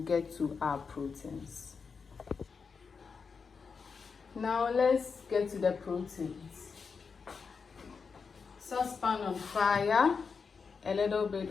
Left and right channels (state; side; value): quieter; right; 5.4 dB